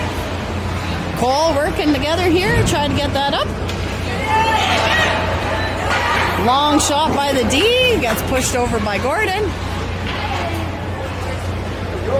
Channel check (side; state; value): both; identical; correlation 1.00